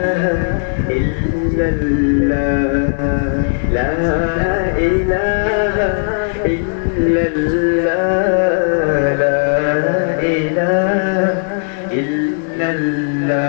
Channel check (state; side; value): silent; right; digital silence